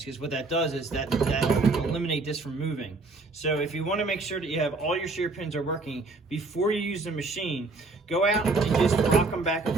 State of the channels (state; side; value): quieter; left; 3.5 dB